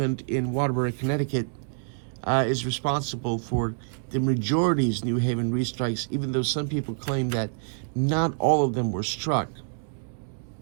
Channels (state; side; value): silent; left; 60 dB below the other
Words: in Waterbury, Connecticut, is responsible for the majority's New Haven restrikes, even though some people claim that not all of them were struck